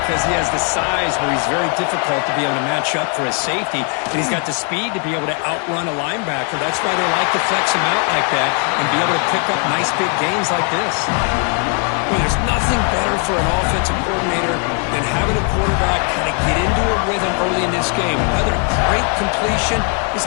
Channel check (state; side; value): quieter; right; 38.6 dB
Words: he has the size where he's very difficult to be able to match up for his safety, and he's got the speed to be able to outrun a linebacker. That's why they like to flex him out like that and be able to pick up nice big gains like this. Well, there's nothing better for an offensive coordinator than having a quarterback kind of get into a rhythm early in this game. Another great completion. This